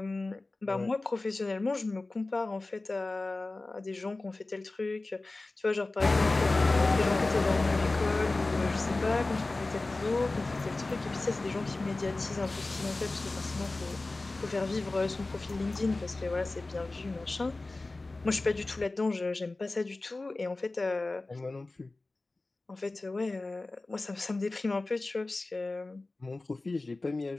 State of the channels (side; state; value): right; quieter; 3.2 dB